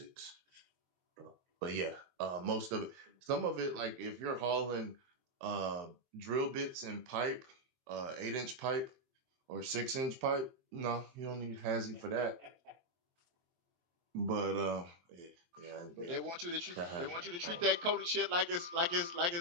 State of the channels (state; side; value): late; left; 23 ms